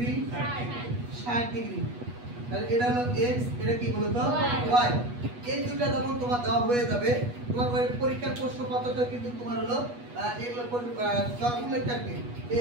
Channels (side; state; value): left; late; 8.2 ms